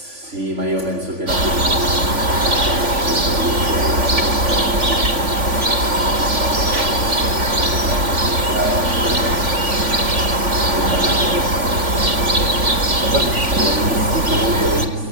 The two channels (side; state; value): left; late; 3.5 ms